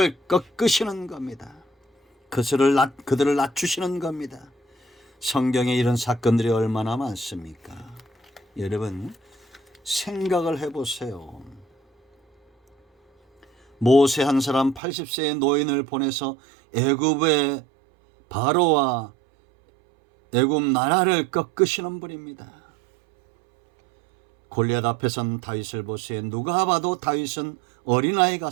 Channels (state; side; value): drops out; left; at 14.8 s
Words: 꺾으시는 겁니다. 그들을 낮추시는 겁니다. 성경에 이런 사건들이 얼마나 많습니까? 여러분, 생각을 해보세요. 모세 한 사람 80세의 노인을 보내서 애굽의 바로와 애굽 나라를 꺾으시는 분입니다. 골리앗 앞에선 다윗을 보세요. 누가 봐도 다윗은 어린아이